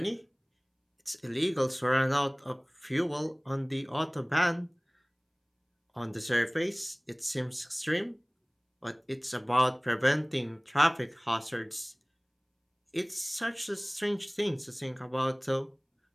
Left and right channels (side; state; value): both; identical; correlation 1.00